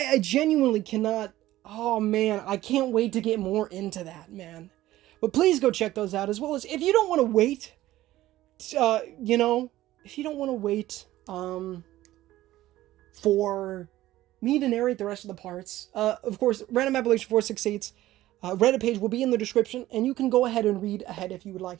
genuinely cannot... Oh man, I can't wait to get more into that, man. But please go check those out, as well as if you don't want to wait, you know, if you don't want to wait for me to narrate the rest of the parts, of course, Random Appellation 468's Reddit page will be in the description, and you can go ahead and read ahead if you would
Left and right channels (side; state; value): left; quieter; 15.3 dB